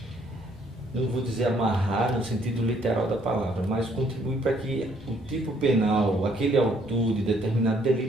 não vou dizer amarrar no sentido literal da palavra, mas contribuir para que o tipo penal, aquele autor de determinado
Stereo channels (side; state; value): both; normal; correlation 0.66